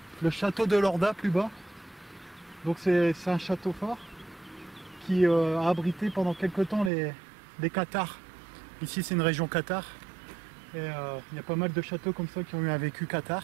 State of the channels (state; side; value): drops out; left; at 6.9 s